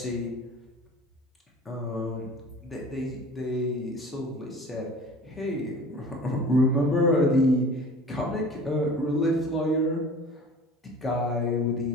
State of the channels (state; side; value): normal; both; correlation 0.42